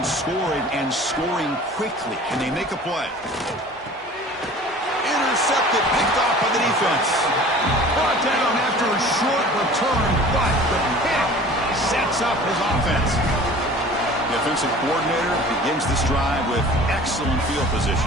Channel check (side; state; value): both; normal; correlation 0.44